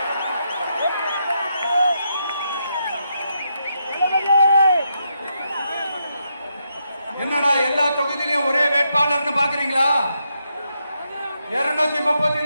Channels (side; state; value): both; inverted; correlation -0.81